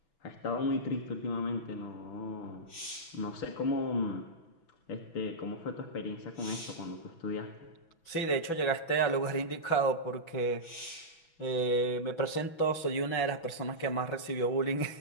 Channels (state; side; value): late; right; 6.1 ms